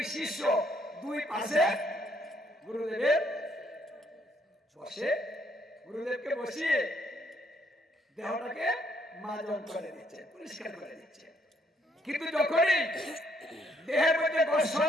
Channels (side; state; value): both; normal; correlation 0.70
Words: শিষ্য দুই পাশে গুরুদেবের বসে গুরুদেবকে বসিয়ে দেহটাকে মাজন করে দিচ্ছে, পরিষ্কার করে দিচ্ছে। কিন্তু যখনই দেহের মধ্যে